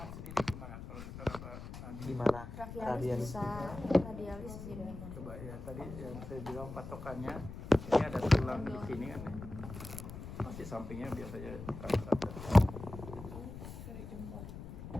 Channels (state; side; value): noise; left; rumble, 11 dB below the sound